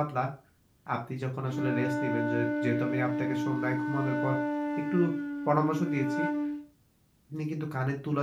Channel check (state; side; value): identical; both; correlation 1.00